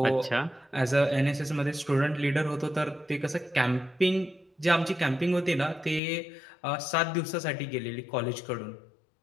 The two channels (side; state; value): right; drops out; at 6.0 s